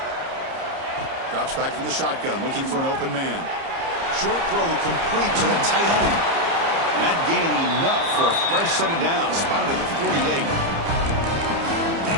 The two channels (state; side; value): late; left; 30 ms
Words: Drops back from the shotgun, looking for an open man. Short throw complete to the tight end. That gain enough for a fresh set of downs. Spotted at the 48.